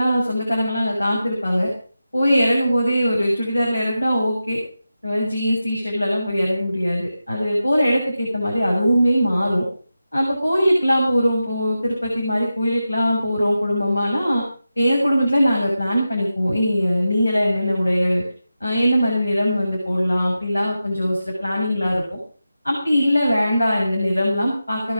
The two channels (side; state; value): both; inverted; correlation -0.92